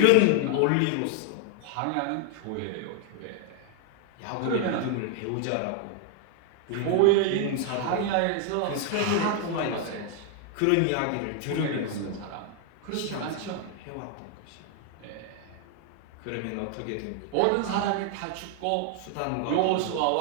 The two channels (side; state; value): both; different; correlation 0.00